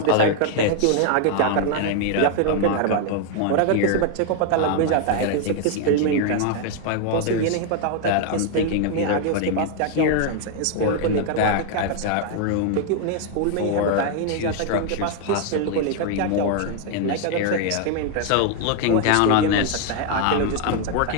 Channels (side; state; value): both; different; correlation 0.00